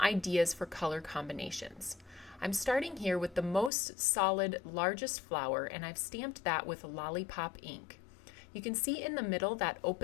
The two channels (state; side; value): drops out; right; at 3.7 s